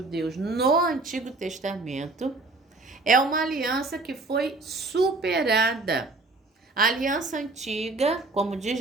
no Antigo Testamento é uma aliança que foi superada. A aliança antiga, como diz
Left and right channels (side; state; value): left; quieter; 3.3 dB